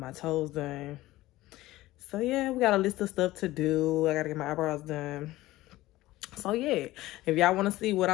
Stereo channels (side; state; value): right; quieter; 17.2 dB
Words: toes done. So yeah, we got a list of stuff to do. I gotta get my eyebrows done. So yeah, if y'all wanna see what